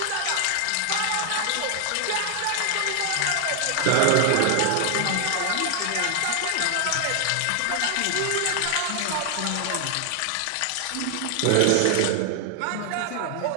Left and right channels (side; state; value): both; different; correlation 0.00